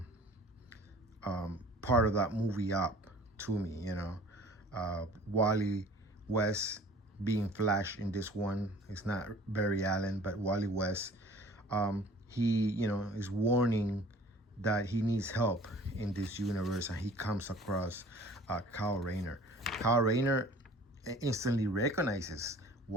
part of that movie up to me. Wally West being Flash in this one. It's not Barry Allen, but Wally West. He is warning that he needs help in this universe, and he comes across Kyle Rayner. Kyle Rayner instantly recognizes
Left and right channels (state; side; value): normal; both; correlation 0.48